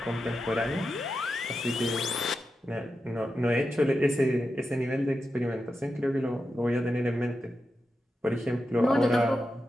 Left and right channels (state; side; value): normal; both; correlation 0.89